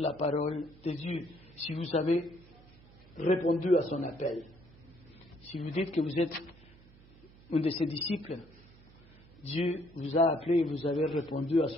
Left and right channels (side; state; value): right; noise; hum, 24 dB below the sound